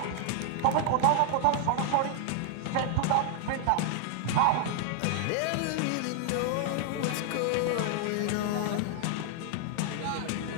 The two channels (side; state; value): both; different; correlation 0.00